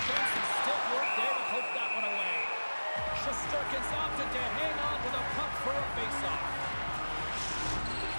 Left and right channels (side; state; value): both; inverted; correlation -1.00